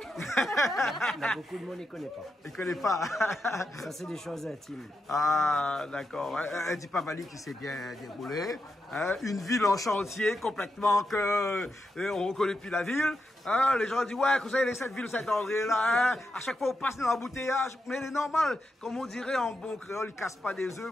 Il y a beaucoup de monde qui ne connaît pas. Il ne connaît pas. Ça, c'est des choses intimes. Ah, d'accord. Un Dipavali qui s'est bien déroulé. Hein, une ville en chantier complètement que on reconnaît plus la ville. Hein, les gens disent, ouais, vous savez, cette ville Saint-André là, hein, à chaque fois on passe dans l'embouteillage. Mais il est normal, comme on dirait en bon créole, ils ne cassent pas des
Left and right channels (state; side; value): normal; both; correlation 0.86